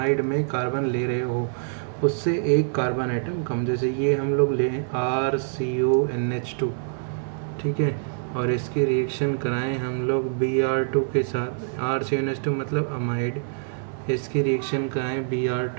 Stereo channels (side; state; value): left; silent; digital silence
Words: में कार्बन ले रहे हो उससे 1 कार्बन आइटम कम। जैसे ये हम लोग लें RCONH2, ठीक है, और इसकी रिएक्शन कराएं हम लोग Br2 के साथ। RCONH2 मतलब अमाइड, इसकी रिएक्शन कराएं